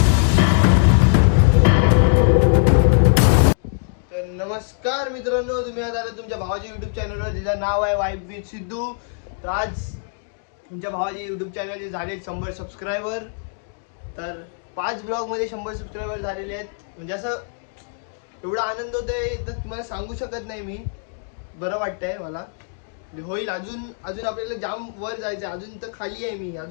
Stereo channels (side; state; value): right; silent; 64 dB below the other